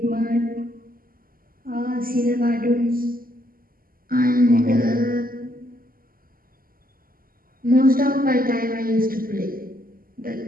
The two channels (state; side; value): late; left; 0.42 ms